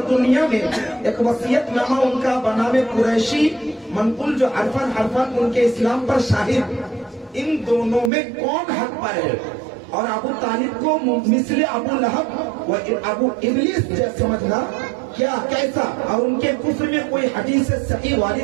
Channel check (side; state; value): left; drops out; at 8.1 s